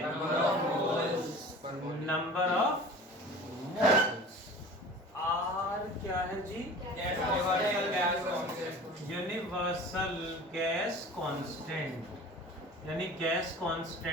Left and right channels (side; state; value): both; normal; correlation 0.40